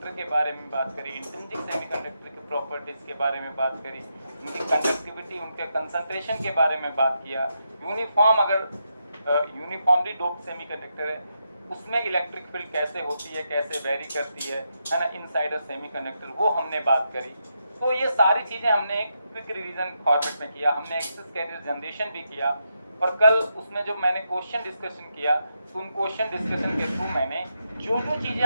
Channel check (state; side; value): inverted; both; correlation -0.83